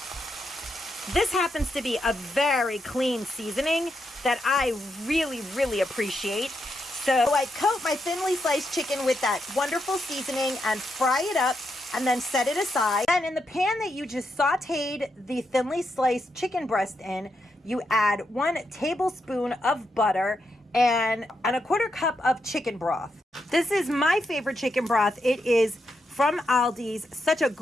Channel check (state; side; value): normal; both; correlation 0.83